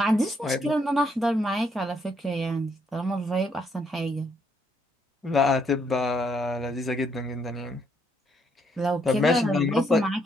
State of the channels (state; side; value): normal; both; correlation 0.72